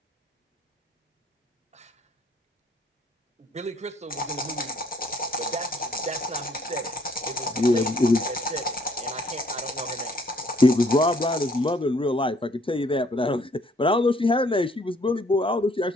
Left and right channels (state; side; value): normal; both; correlation 0.63